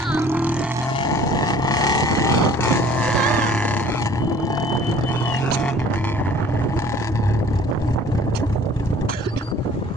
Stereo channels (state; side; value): normal; both; correlation 0.51